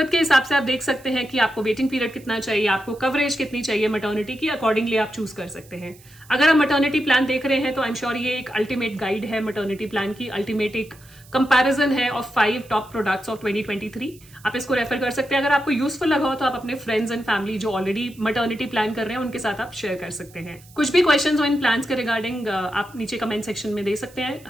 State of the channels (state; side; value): noise; right; hiss, 25 dB below the sound